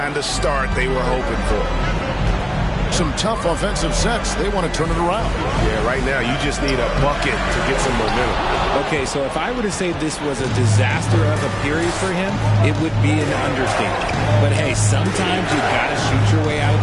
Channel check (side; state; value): both; identical; correlation 1.00